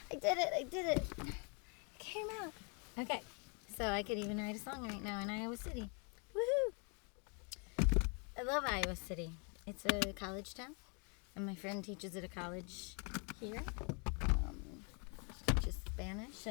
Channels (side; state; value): right; quieter; 36.2 dB